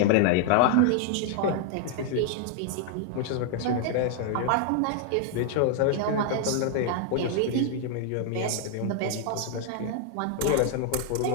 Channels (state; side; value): different; both; correlation 0.00